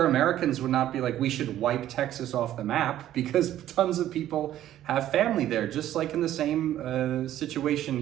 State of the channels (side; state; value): left; quieter; 12.5 dB